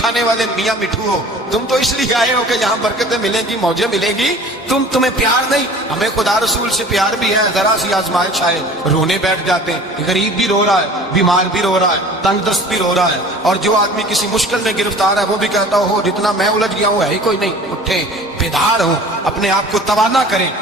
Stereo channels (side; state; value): both; normal; correlation 0.44